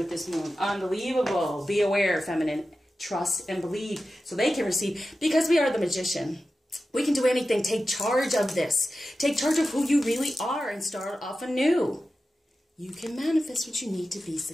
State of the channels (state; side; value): normal; both; correlation 0.93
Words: this moon. Unbelievable. Be aware, feminine. Trust and believe so they can receive, because we are the magician. We can do anything. Take charge of this. Take charge of who you really are and start off anew. You can manifest what you need to be